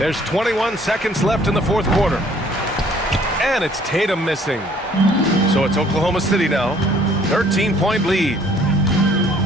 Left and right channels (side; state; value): both; normal; correlation 0.59